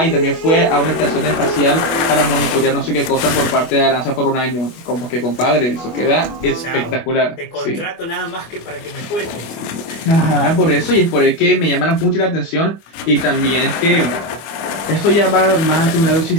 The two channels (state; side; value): late; right; 25 ms